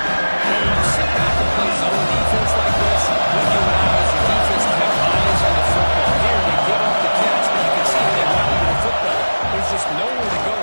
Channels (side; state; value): both; inverted; correlation -1.00